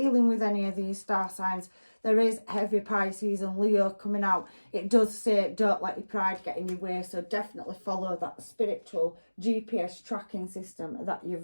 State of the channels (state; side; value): inverted; both; correlation -1.00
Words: with any of these star signs. There is heavy Pisces and Leo coming out. It does say don't let your pride get in your way, so definitely follow that spiritual GPS tracking system that